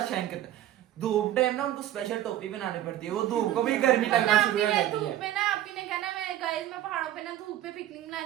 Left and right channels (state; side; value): quieter; left; 13.0 dB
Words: शाइन करता है धूप टाइम ना उनको स्पेशल टोपी बनानी पड़ती है वो धूप को भी गर्मी लगना शुरू हो जाती धूप है में ना आपी ने कहना मैं गाइस मैं पहाड़ों पे ना धूप पे पिकनिक